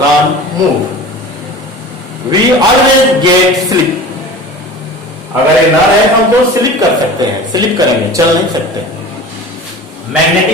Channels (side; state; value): both; normal; correlation 0.37